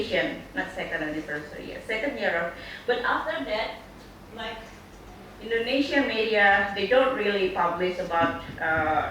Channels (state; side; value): identical; both; correlation 1.00